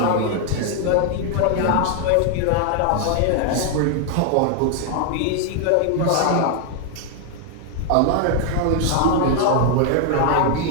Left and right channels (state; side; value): different; both; correlation 0.00